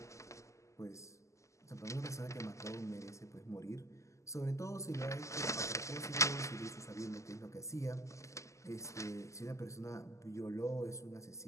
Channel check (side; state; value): right; late; 0.15 ms